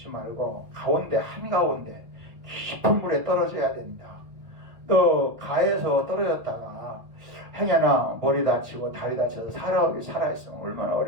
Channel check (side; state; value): left; late; 1.5 ms